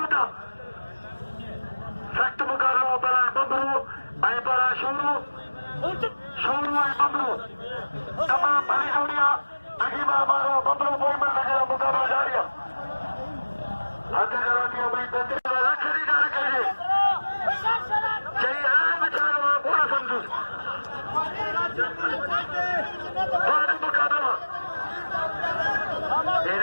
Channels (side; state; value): both; inverted; correlation -1.00